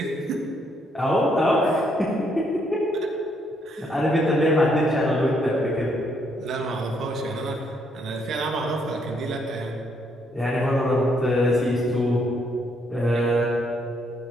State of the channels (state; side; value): normal; both; correlation 0.73